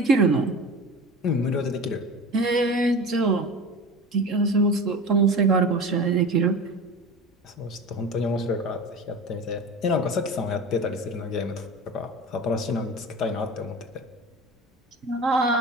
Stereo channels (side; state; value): both; normal; correlation 0.33